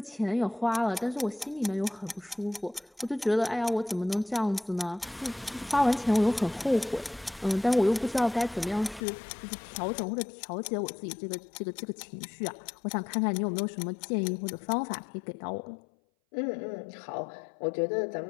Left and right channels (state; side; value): drops out; right; at 9.0 s